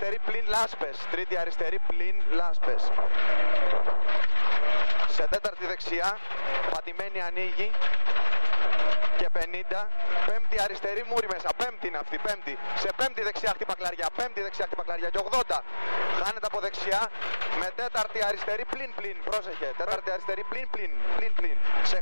πλην λάσπες. Τρίτη αριστερή πλην λάσπες. Σε τέταρτη δεξιά. Πατημένη ανοίγει. Και 50. Πέμπτη αριστερή μούρη μέσα. Πέμπτη είναι αυτή. Πέμπτη. Σε πέμπτη δεξιά χτύπα κλαριά. Πέμπτη δεξιά χτύπα κλαριά. Και 80. Χάνεται από δεξιά. Με τέταρτη αριστερή πλην πλην. Πρόσεχε. Τέταρτη αριστερή πλην πλην. Πλην πλην. Σε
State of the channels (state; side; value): inverted; both; correlation -1.00